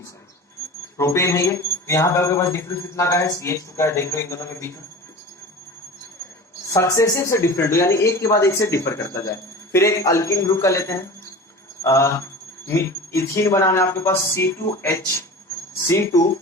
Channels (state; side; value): normal; both; correlation 0.35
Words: है ये। तो यहाँ पे आपके पास डिफरेंस कितना का है, CH2 का है। देख लो इन दोनों के बीच में सक्सेसिव से डिफरेंट हो, यानी एक के बाद एक से डिफर करता जाए। फिर एक अल्किन ग्रुप का लेते हैं, इथीन बनाना है आपके पास C2